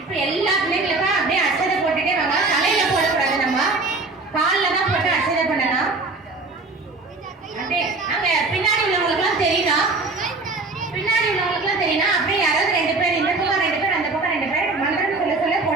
இப்ப எல்லா பிள்ளைங்களுக்கும் அப்படியே அச்சதை போட்டுட்டே வாங்க. தலையில போடக்கூடாது, நம்ம காலில் தான் போட்டு அச்சதை பண்ணலாம். அப்படியே அங்க பின்னாடி உள்ளவங்களுக்குலாம் தெரியணும், அப்படியே யாராவது 2 பேர் இந்த பக்கம் 2 பேர் அந்த பக்கம் 2 பேர் மந்திரம் சொல்ல சொல்ல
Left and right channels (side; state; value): left; quieter; 3.5 dB